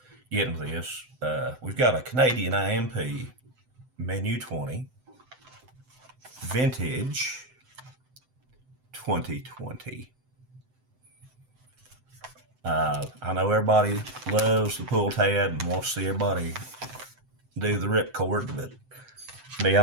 get into this. We've got a Canadian IMP Menu 20 Vintage 2020. I know everybody loves the pull tab and wants to see everybody do the ripcord, but to be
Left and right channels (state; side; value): late; left; 7.8 ms